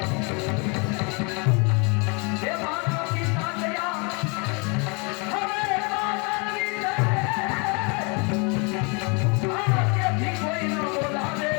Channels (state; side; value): quieter; right; 32.4 dB